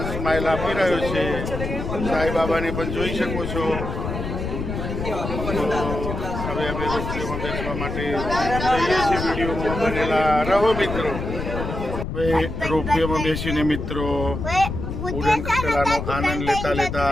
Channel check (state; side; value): noise; left; rumble, 5 dB below the sound